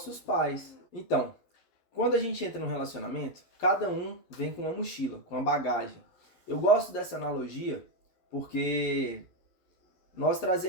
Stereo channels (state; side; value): late; right; 12 ms